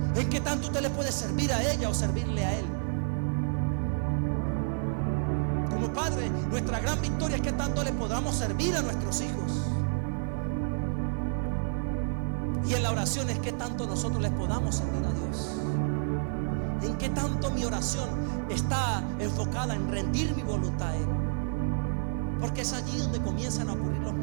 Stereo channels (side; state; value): left; silent; 58 dB below the other